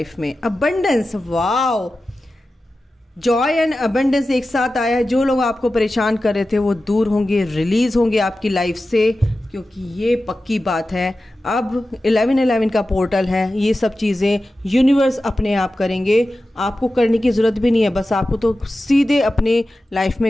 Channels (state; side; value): normal; both; correlation 0.94